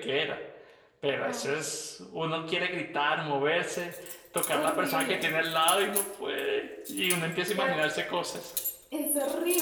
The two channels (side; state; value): both; identical; correlation 1.00